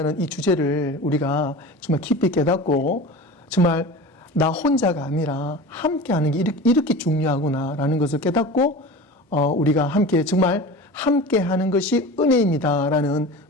이 주제를 우리가 정말 깊이 깨닫고 정말 나 혼자가 아니라 함께하는 게 이렇게 중요하구나라는 것을 깨닫고 우리가 함께 정말 함께하는 것이 은혜입니다라는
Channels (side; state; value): both; normal; correlation 0.34